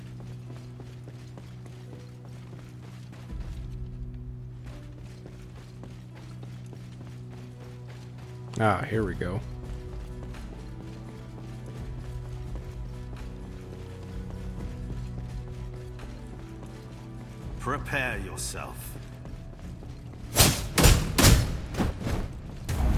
Ah, here we go. Prepare yourself.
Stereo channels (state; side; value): identical; both; correlation 1.00